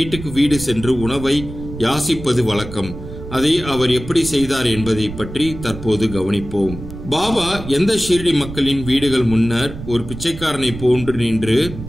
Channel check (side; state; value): right; noise; rumble, 11 dB below the sound